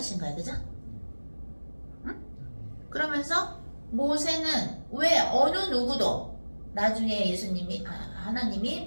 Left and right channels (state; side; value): inverted; both; correlation -1.00